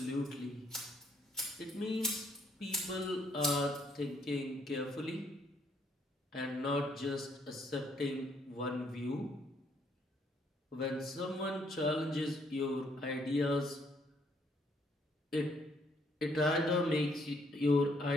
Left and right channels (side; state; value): both; normal; correlation 0.68